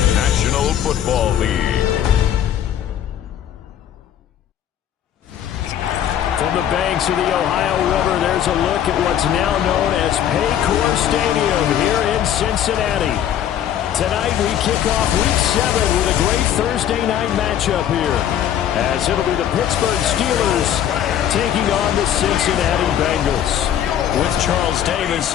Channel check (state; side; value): quieter; right; 10.3 dB